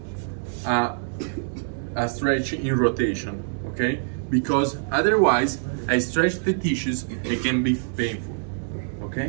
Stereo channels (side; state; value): left; silent; digital silence